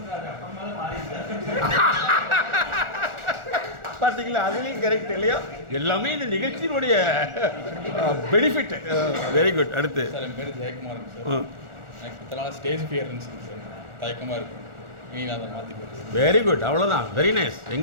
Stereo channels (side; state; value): left; late; 1.4 ms